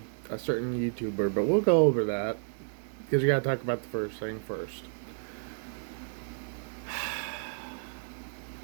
certain YouTuber, but we'll go over that. Because we gotta talk about the first thing first.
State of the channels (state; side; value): silent; left; digital silence